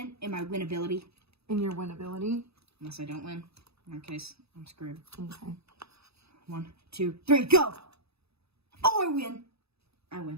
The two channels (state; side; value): late; left; 0.78 ms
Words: in my winnability. In your winnability? Unless I don't win. In that case, I'm screwed. Okay. 1, 2, 3, go! Oh, I win! I